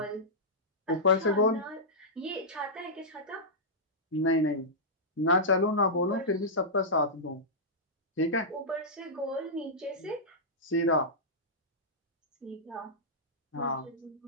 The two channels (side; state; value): both; normal; correlation -0.13